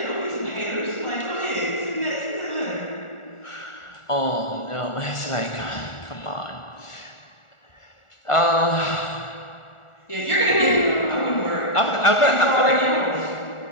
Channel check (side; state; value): right; late; 1.4 ms